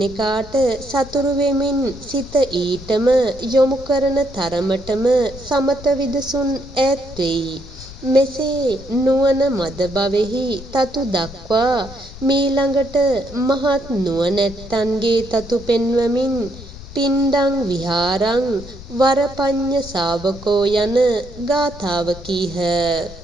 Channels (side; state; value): left; noise; rumble, 15 dB below the sound